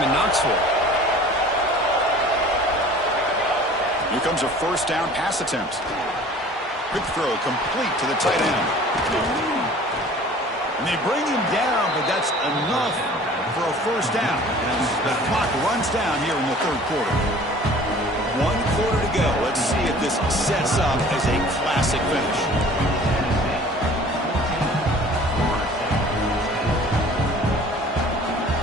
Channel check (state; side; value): normal; both; correlation 0.48